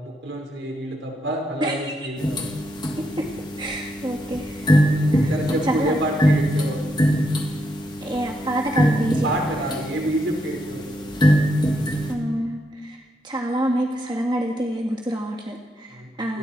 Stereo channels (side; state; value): both; normal; correlation 0.79